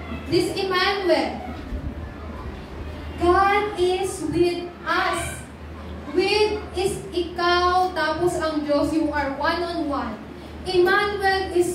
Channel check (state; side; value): identical; both; correlation 1.00